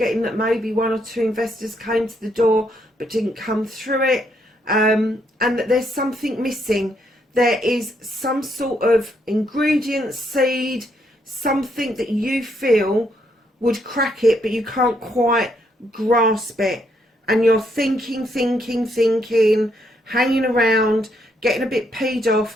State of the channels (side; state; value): both; normal; correlation 0.74